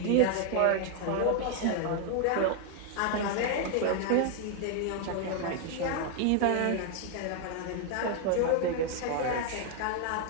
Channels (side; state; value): both; different; correlation 0.00